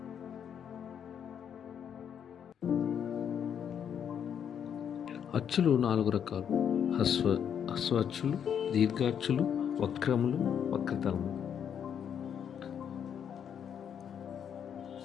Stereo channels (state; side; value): quieter; right; 8.4 dB